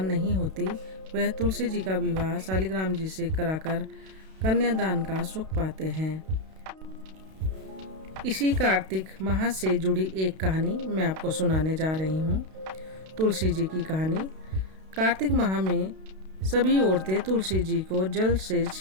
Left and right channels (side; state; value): left; late; 32 ms